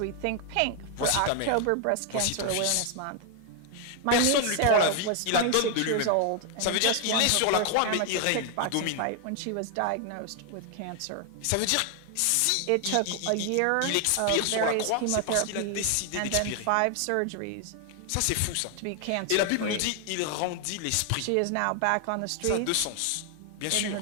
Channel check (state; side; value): different; both; correlation 0.00